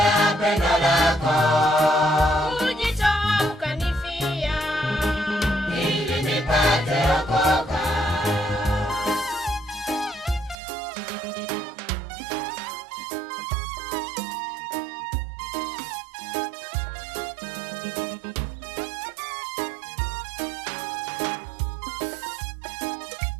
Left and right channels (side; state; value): left; drops out; at 10.6 s